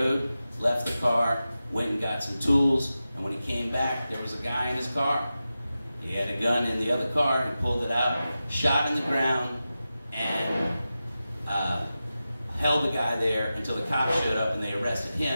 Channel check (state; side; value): inverted; both; correlation -0.93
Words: left the car, went and got some tools, and when he came back, there was a guy in his car. He had a gun in the other car, he pulled it out, shot in the ground, and held the guy there until the cops showed up and they arrested